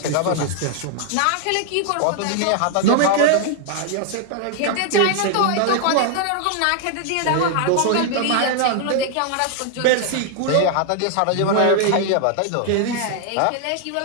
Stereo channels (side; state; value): both; different; correlation 0.00